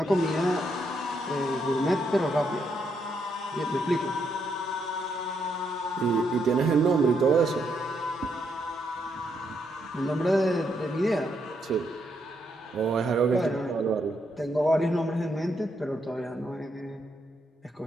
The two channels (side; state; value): both; normal; correlation 0.77